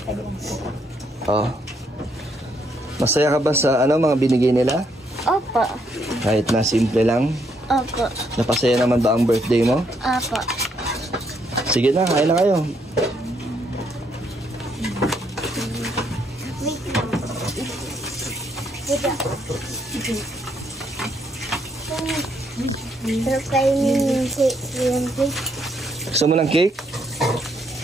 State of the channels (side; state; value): both; normal; correlation 0.73